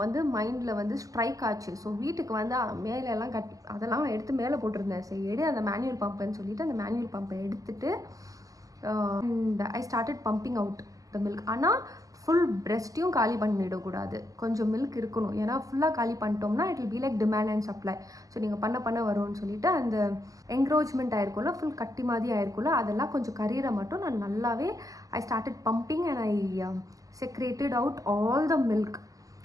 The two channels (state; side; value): late; left; 0.17 ms